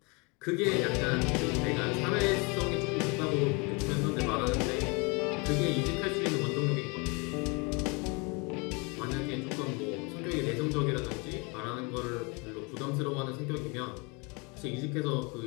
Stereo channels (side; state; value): right; quieter; 30.1 dB